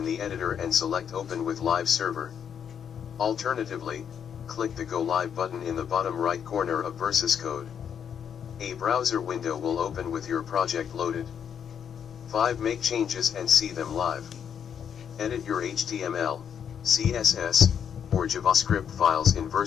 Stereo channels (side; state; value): right; quieter; 8.1 dB